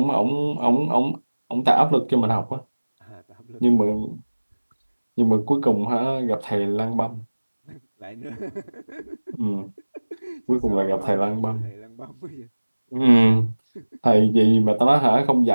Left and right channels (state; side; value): inverted; both; correlation -1.00